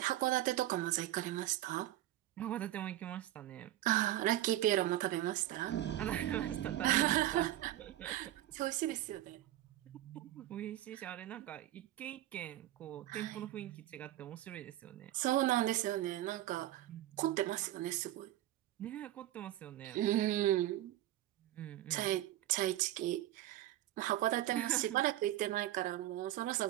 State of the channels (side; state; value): left; quieter; 14.3 dB